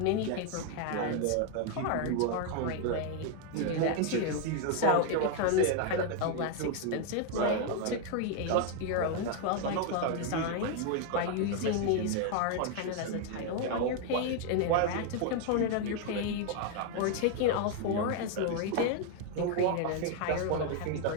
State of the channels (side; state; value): both; different; correlation 0.01